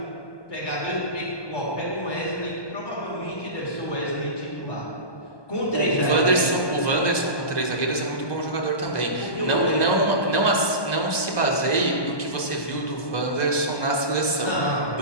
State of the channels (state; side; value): late; right; 1.2 ms